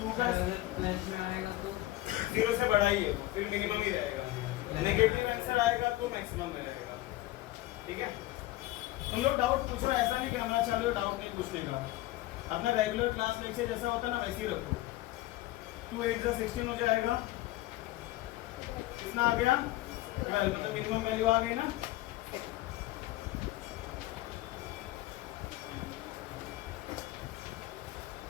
का प्लस में आएगा तो जीरो से बड़ा ही है, फिर मिनिमम ही रहेगा, नेगेटिव आंसर आएगा तो मैक्सिमम में रहेगा, ठीक है। तुम लोग डाउट पूछो, ऐसा नहीं कैमरा चालू डाउट नहीं पूछने का, अपना रेगुलर क्लास लेक्चर जैसा होता ना वैसे ही रखो। 2 8 जा 16 हो जाएगा, कितना आ गया 12, मतलब मिनिमम वैल्यू आ गई ना।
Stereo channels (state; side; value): quieter; right; 17.1 dB